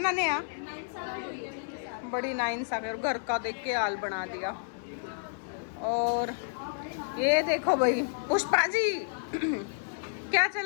नेहा? बड़ी नाइंसाफी। और घर का देख के हाल बना दिया। और ये देखो भाई पुष्पा जी क्या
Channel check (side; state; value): right; silent; 57 dB below the other